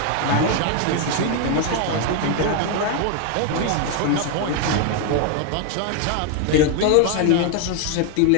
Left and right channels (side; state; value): both; different; correlation 0.01